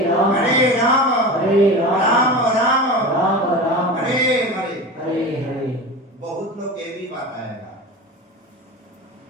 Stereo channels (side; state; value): both; normal; correlation 0.29